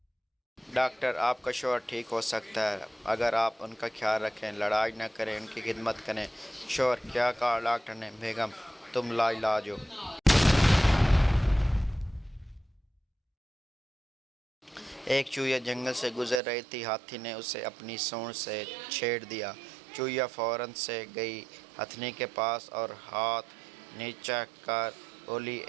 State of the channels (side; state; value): left; drops out; at 16.4 s